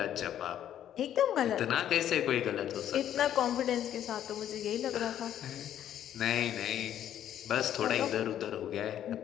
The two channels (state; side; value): quieter; right; 10.8 dB